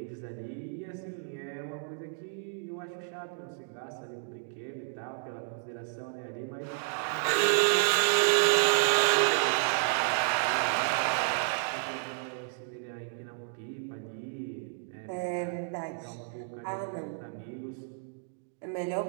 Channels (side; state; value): left; silent; digital silence